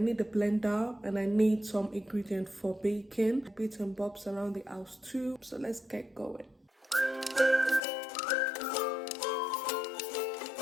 I need a blender and I need some ingredients for baking, bits and bobs around the house too. So let's get going.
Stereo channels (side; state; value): right; drops out; at 7.8 s